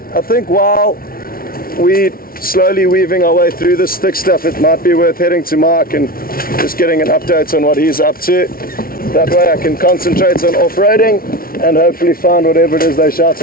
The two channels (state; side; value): late; right; 0.43 ms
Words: think while we slowly weaving our way through this thick stuff, it might be worth heading to Mark and just getting an update on what he's up to. That way I can concentrate on off-roading and hopefully find whatever it is they're